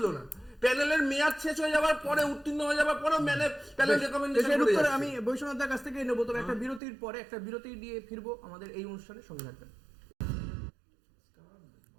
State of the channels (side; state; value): left; drops out; at 6.8 s